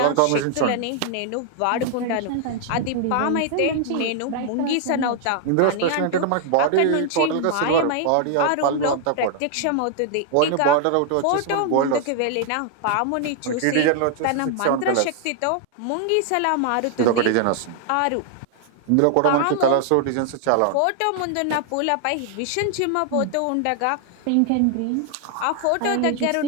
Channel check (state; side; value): different; both; correlation 0.00